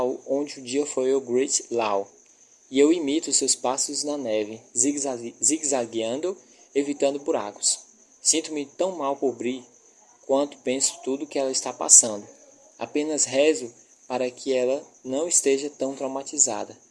foi o Great Law, e eu imito seus passos na neve, zigue-zagueando, evitando buracos. Sinto-me tão mal por Bri quanto penso tudo que ela está passando. Apenas rezo para que ela não esteja tão traumatizada.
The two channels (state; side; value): identical; both; correlation 1.00